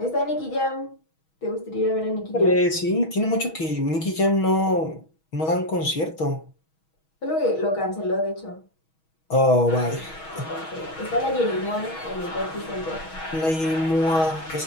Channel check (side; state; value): right; late; 6.3 ms